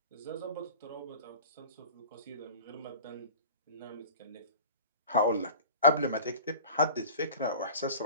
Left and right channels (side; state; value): both; inverted; correlation -0.39